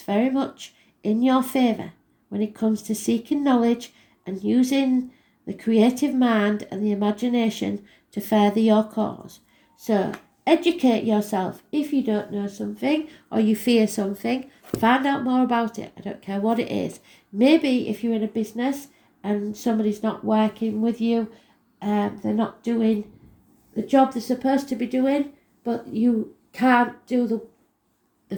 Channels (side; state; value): both; identical; correlation 1.00